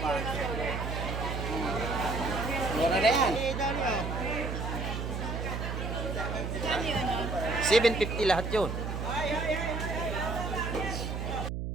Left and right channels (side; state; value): right; noise; hum, 3 dB below the sound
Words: pa. Mura na yan. Eh, dali ah. 750 lahat yun.